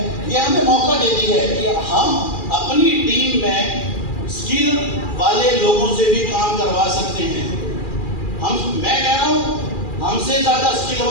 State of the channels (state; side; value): late; right; 2.4 ms